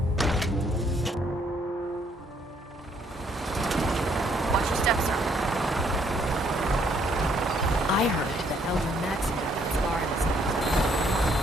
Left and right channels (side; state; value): both; normal; correlation 0.68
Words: Watch your steps, sir. I heard that Elder Maxon got that scar in his head.